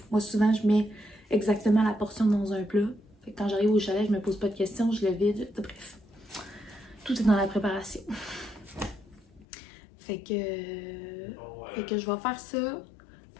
Moi, souvent, je mets exactement la portion dans un plat. Fait que quand j'arrive au chalet, je me pose pas de questions, je le vide, bref. Tout est dans la préparation. Fait que je vais faire ça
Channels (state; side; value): drops out; right; at 9.5 s